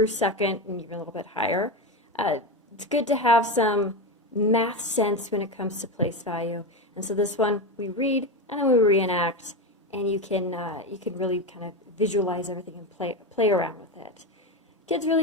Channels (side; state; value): both; normal; correlation 0.17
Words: 2nd, and even a little bit higher. It's good to have some math sense when it comes to place value. And so this one we read and then we reenact, and you can really kind of visualize everything and play around with it. Kids